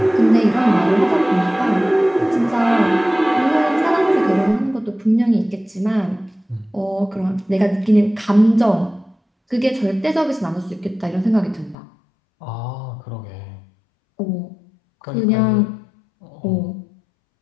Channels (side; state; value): right; drops out; at 11.8 s